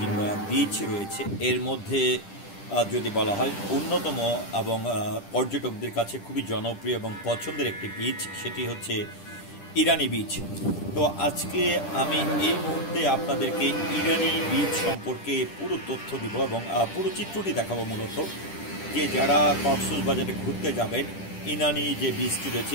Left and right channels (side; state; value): right; late; 10 ms